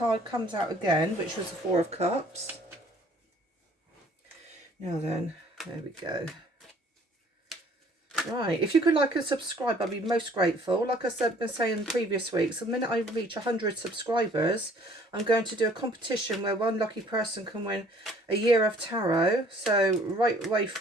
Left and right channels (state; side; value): normal; both; correlation 0.56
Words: comes out again, which was the Four of Cups. Now then, there we go. Right, if you could like and subscribe, I'd be most grateful. Like I said, been saying in previous weeks, the minute I reach 100 subscribers, I'm going to do a competition where one lucky person can win a year of tarot. So right way